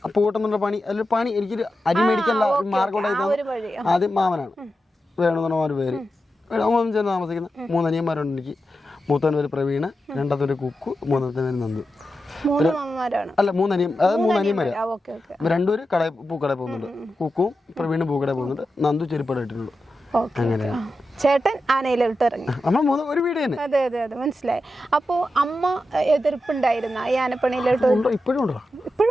പൂട്ടം എന്നുള്ള പണി അതിൽ പണി എനിക്കൊരു അരി മേടിക്കാനുള്ള മാർഗം ഉണ്ടായിരുന്നത് ആദ്യം മാമനാണ് വേണമെന്നുള്ള ഒരു പേര് ചേർന്ന് താമസിക്കുന്ന 3 അനിയന്മാരുണ്ട് എനിക്ക്. മൂത്തവൻ്റെ പേര് പ്രവീണ്, രണ്ടാമത്തെ പേര് കുക്കു, മൂന്നാമത്തെ പേര് നന്ദു. അല്ല 3 അനിയന്മാര്. രണ്ടുപേര് പൂക്കടയിൽ പോകുന്നുണ്ട്. കുക്കും പ്രവീണും പൂക്കടയിൽ പോകുന്നുണ്ട്. നന്ദു ചെരുപ്പട ഇട്ടിട്ടുണ്ട്. അങ്ങനെ ചേട്ടൻ ആനയിലോട്ട് ഇറങ്ങി. നമ്മൾ ഒരു വീട് തന്നെ. അതെ അതെ അതെ മനസ്സിലായി. അപ്പൊ അമ്മ എതിർപ്പുണ്ടായിരുന്ന ഈ ആനപ്പണിയിലോട്ട്? ഇപ്പോഴും ഉണ്ടോ?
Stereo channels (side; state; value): both; normal; correlation 0.90